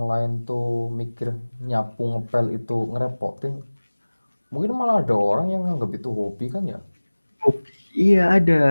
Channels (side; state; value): both; inverted; correlation -1.00